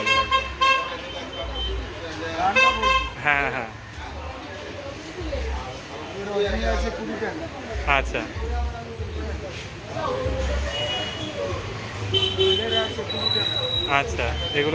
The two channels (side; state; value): both; identical; correlation 1.00